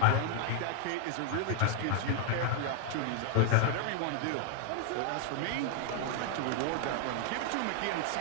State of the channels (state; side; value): different; both; correlation 0.00